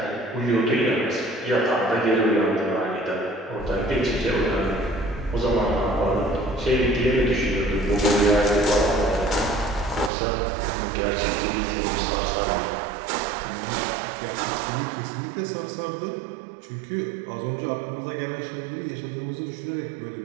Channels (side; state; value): left; drops out; at 10.1 s